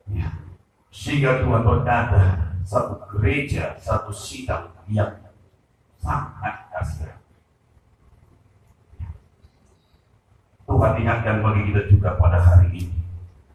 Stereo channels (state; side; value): identical; both; correlation 1.00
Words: Sehingga Tuhan berkata, satu gereja, satu sidang yang sangat kasihan. Tuhan ingatkan bagi kita juga pada hari ini.